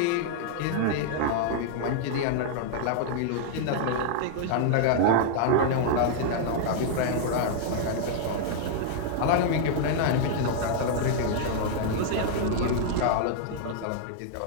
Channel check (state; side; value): different; both; correlation -0.01